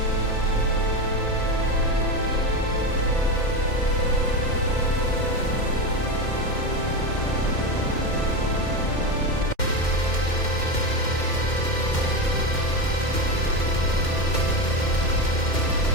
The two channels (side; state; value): right; late; 2.1 ms